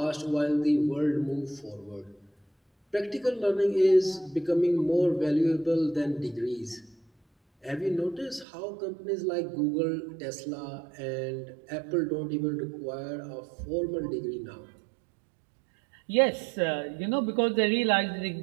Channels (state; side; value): drops out; left; at 8.5 s